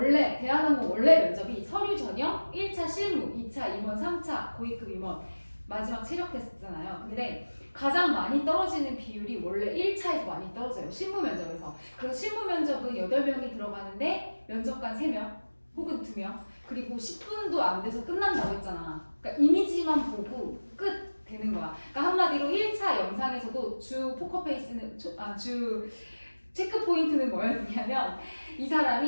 대한항공 원래 면접이 서류 전형, 1차 실무, 2차 임원, 3차 고위급 임원, 마지막 체력 테스트잖아요. 근데 가장 많이 떨어지는 비율이 원래 1차에서 많이 떨어져요. 실무 면접에서. 그래서 실무 면접은 8명이 들어가는데 면접관 3명 혹은 2명 그리고 10분도 안 돼서 끝난다고 했잖아. 그러니까 이미지만 보고 끝 되는 거야. 그러니까 한마디로 1차 영상에서도 주 포커페이스는 주 체크 포인트는 뭐였냐면 이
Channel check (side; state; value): both; inverted; correlation -1.00